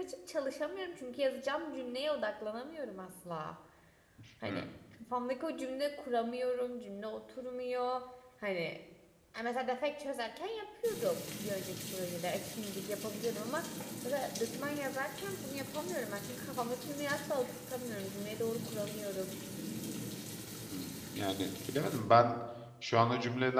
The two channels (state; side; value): identical; both; correlation 1.00